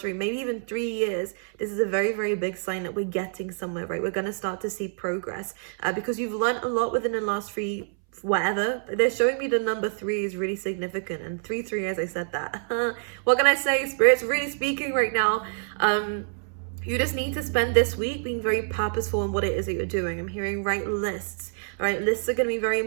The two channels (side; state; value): left; silent; 60 dB below the other